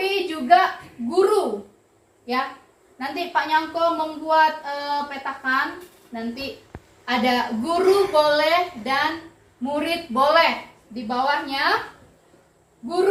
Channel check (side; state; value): both; identical; correlation 1.00